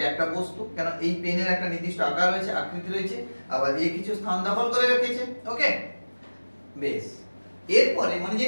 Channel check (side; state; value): both; inverted; correlation -1.00